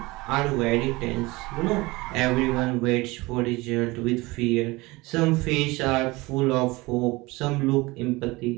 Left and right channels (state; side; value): quieter; left; 22.3 dB